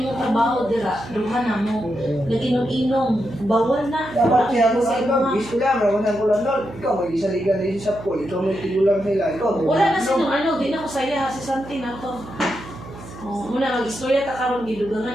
trabaho dira, duha na mo. Nag-inom-inom, bawal na. Dapat siya ko Sa lang. mga- Gis ko lang. Rawasan ko lang doon. Ikaw, may isa liga na isa sa pool. Ikaw, may tigulang sila. Ikaw, may Wala na sino, ano, di na ko saya ha, si Santi na to. Oh, muna mag-istorya ta karon gidugangan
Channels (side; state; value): right; noise; hum, 15 dB below the sound